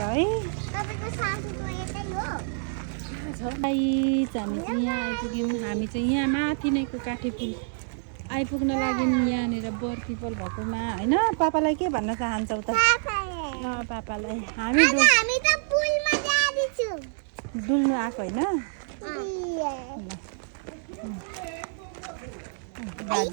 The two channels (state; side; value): silent; left; digital silence